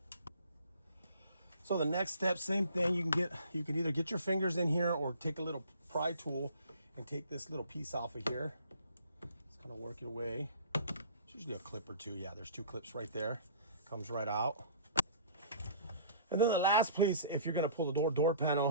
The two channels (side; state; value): both; inverted; correlation -0.49